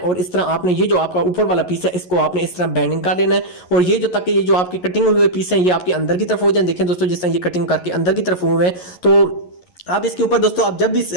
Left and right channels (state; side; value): late; right; 11 ms